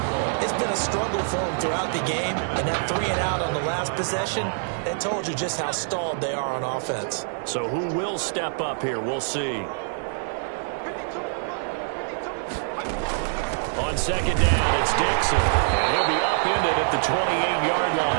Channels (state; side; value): silent; left; digital silence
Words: It's been a struggle for them throughout the game, and that 3 and out on the last possession, that told you just how stalled they are on offense. So who will step up here? We'll see. on second down, it's Dixon. And he'll be upended at the 28-yard